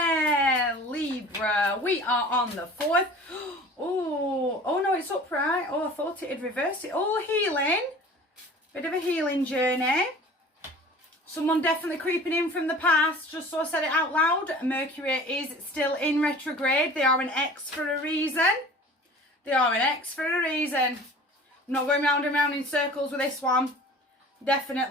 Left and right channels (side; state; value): both; normal; correlation 0.43